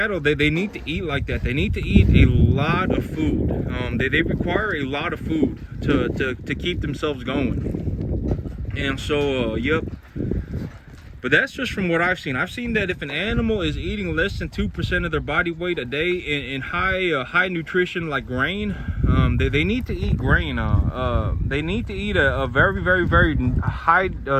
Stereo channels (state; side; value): identical; both; correlation 1.00